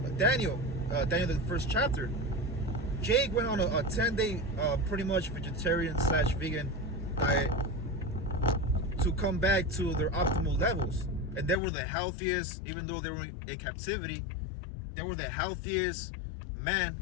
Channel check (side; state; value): right; drops out; at 11.6 s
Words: Daniel, the first chapter. Jake went on a 10-day, pretty much vegetarian/vegan diet to come back to their optimal levels, and they were the healthiest. Even though they were in captivity, they were the healthiest men